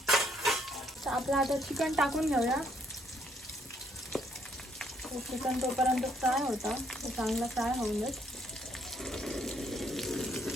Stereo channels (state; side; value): normal; both; correlation 0.69